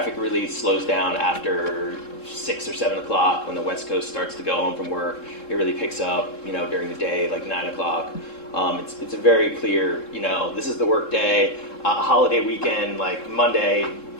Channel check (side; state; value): right; late; 3.7 ms